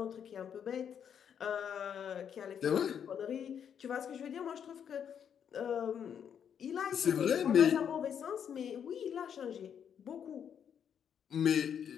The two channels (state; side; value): quieter; right; 8.2 dB